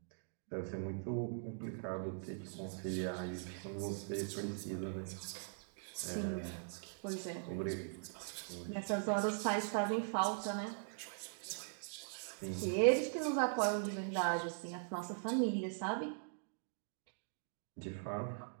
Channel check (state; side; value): silent; left; digital silence